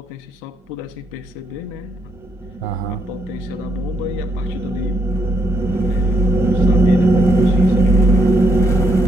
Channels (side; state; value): both; normal; correlation 0.76